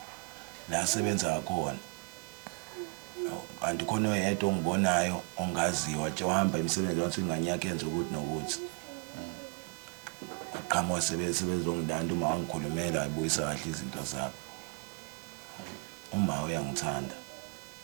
la sebenza ngakhona kanti khona oyedwa ongibonayo ongaziwa nje uhamba imisebenzi wathi ingane yakhe yenza ukuthi nokuthi aqhamuka sebezongilanda uma wangikhulumela ayibuyisa kahle izinto zabo uma uyangithanda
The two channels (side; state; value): left; quieter; 34.7 dB